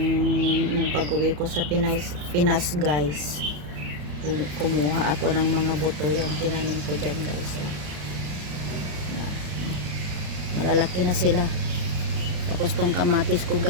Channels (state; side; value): late; left; 34 ms